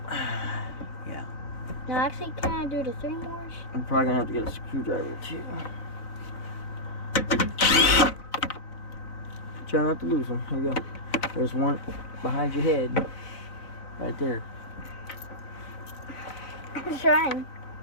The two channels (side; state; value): right; late; 4.0 ms